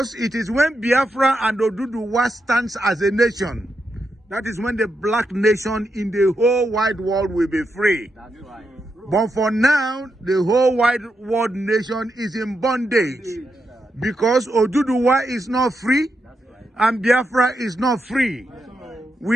it is when Biafra and Oduduwa stands as a nation, that is when the black nation in the whole wide world will be free. That's right. But for now, the whole wide world nation is in bondage because Oduduwa is not free and Biafra is not free.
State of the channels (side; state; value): both; normal; correlation 0.84